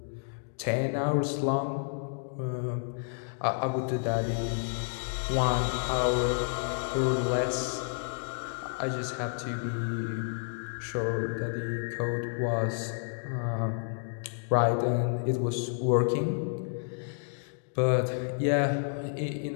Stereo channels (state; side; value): silent; right; digital silence